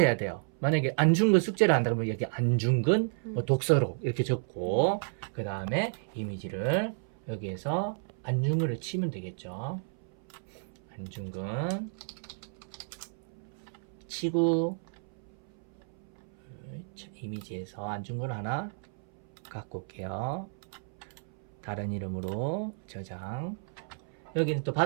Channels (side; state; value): left; silent; 56 dB below the other